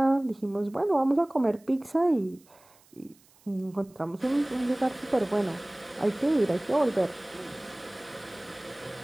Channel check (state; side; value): noise; right; hiss, 29 dB below the sound